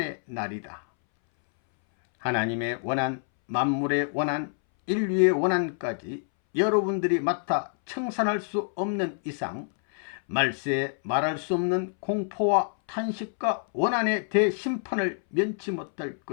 날이다. 하나님의 원한, 만물의 원한, 인류의 원한까지 여러분들이 맡아 청산할 수 없는 이상 말세에 말할 수 없는 공포와 탄식과 원한의 대심판을 면치 못할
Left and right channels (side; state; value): right; silent; 60 dB below the other